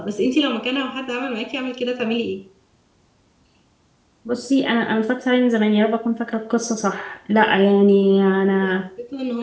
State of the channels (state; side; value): identical; both; correlation 1.00